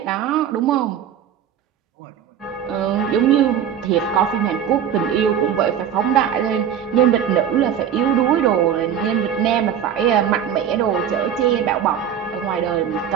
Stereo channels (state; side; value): quieter; left; 9.0 dB